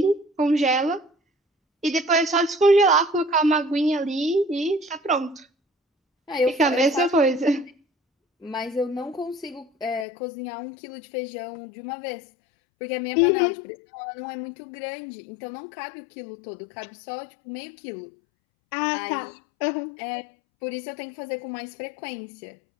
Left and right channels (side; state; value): right; drops out; at 10.1 s